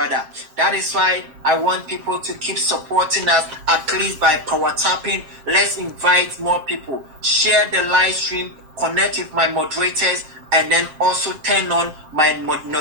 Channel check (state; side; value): late; left; 7.5 ms